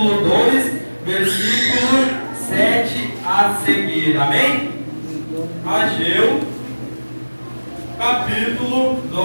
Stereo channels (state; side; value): inverted; both; correlation -1.00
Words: 2, versículo 7 a seguir. Amém? Ageu, capítulo